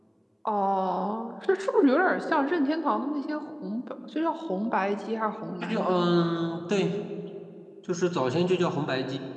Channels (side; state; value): both; identical; correlation 1.00